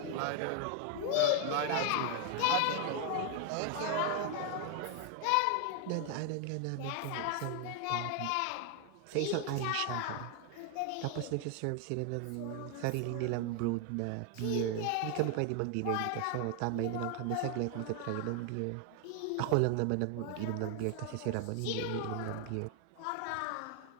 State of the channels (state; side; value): different; both; correlation 0.01